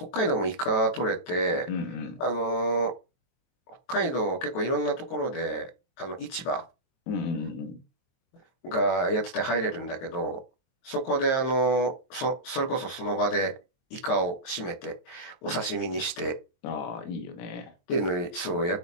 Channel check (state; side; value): late; right; 23 ms